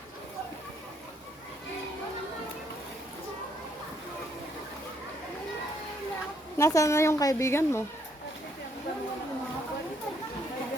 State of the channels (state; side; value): normal; both; correlation 0.71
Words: Nasaan na yung kaibigan mo?